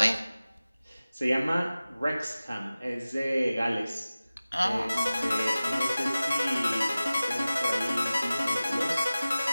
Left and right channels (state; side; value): inverted; both; correlation -0.96